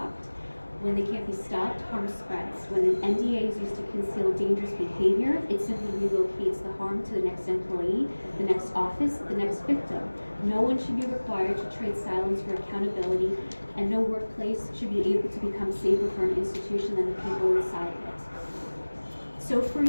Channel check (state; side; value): inverted; both; correlation -1.00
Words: When they can't be stopped, harm spreads. When an NDA is used to conceal dangerous behavior, it simply relocates the harm to the next employee, the next office, the next victim. No one should be required to trade silence for accountability, and no workplace should be able to become safer for an institution than the people inside of it. So for